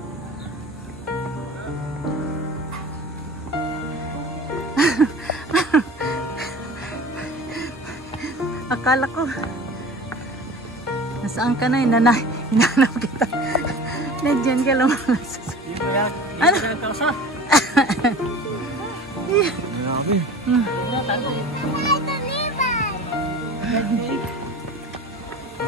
Akala ko. Nasaan ka na? Hinanap kita. Nandiyan ka lumalas. Ano? Grabe.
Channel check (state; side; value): normal; both; correlation 0.38